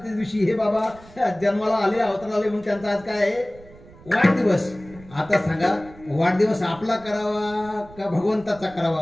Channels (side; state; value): right; noise; rumble, 21 dB below the sound